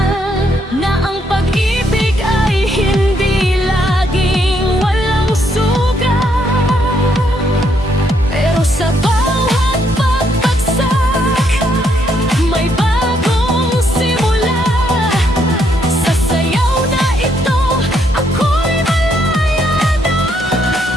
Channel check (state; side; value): normal; both; correlation 0.73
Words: na ang pag-ibig ay hindi laging walang sugat. Pero sa bawat pagbagsak, may bagong simula. Sa sayaw na ito, ako'y malaya na.